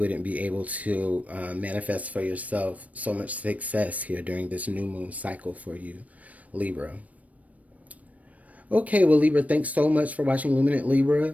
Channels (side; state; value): left; late; 0.069 ms